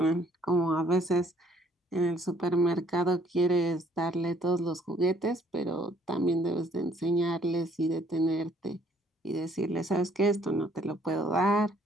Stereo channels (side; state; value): both; normal; correlation 0.63